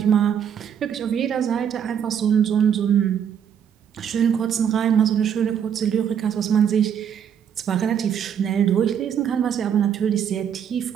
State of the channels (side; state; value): left; quieter; 8.5 dB